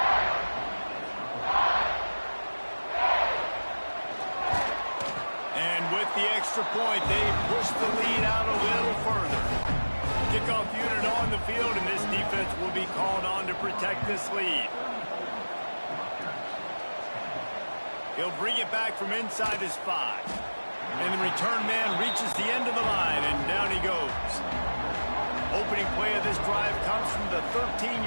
And with the extra point, they push the lead out a little further. Kickoff unit on the field, and this defense will be called on to protect this lead. He'll bring it back from inside his 5. And the return man reaches the end of the line, and down he goes. Opening play of this drive comes from the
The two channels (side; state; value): both; inverted; correlation -1.00